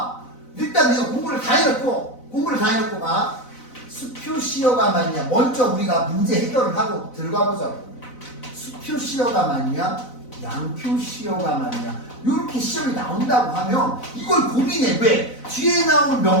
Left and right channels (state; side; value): late; right; 4.0 ms